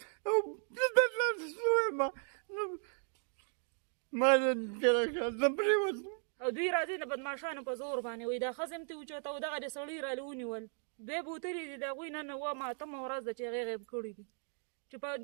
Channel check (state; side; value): silent; left; 53 dB below the other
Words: او دلته شویم ما زه پرېوتم او دوی راځي د بدماشانو په زور باندې وایي دا ښځه هم ترې اوچته او دغه د سړي رالې ونیول دوی بوتلې دي د هغوی نن اوومه اتمه ورځ ده چې هغې غیب کړي دي چې په